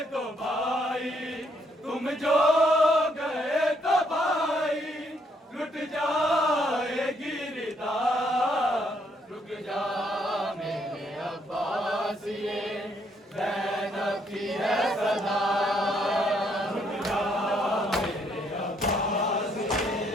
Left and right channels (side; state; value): both; normal; correlation 0.71